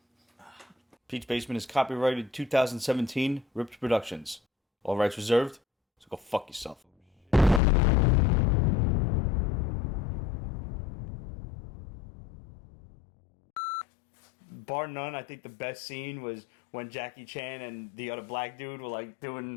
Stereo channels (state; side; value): drops out; right; at 7.6 s